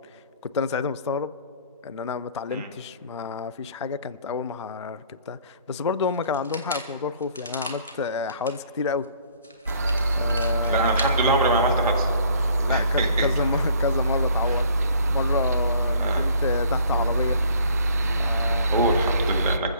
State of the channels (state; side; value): inverted; both; correlation -0.57